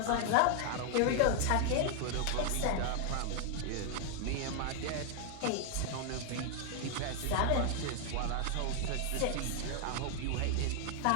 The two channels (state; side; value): different; both; correlation 0.00